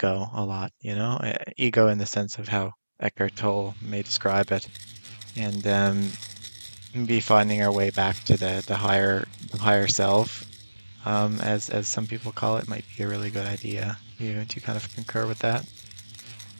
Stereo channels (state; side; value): inverted; both; correlation -1.00